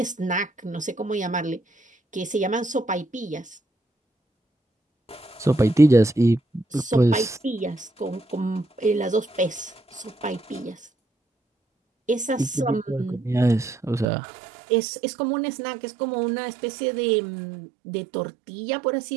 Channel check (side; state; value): left; drops out; at 14.1 s